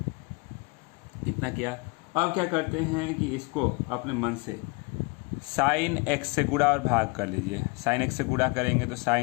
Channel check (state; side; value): quieter; right; 28.4 dB